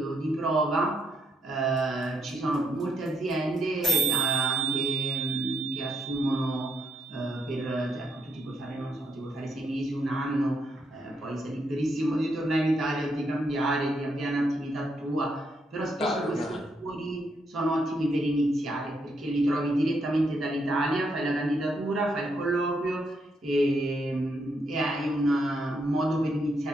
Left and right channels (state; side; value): normal; both; correlation 0.76